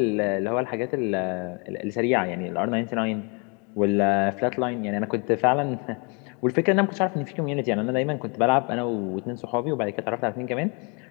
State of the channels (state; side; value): quieter; right; 34.0 dB